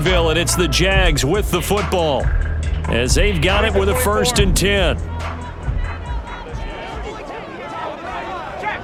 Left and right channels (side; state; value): both; identical; correlation 1.00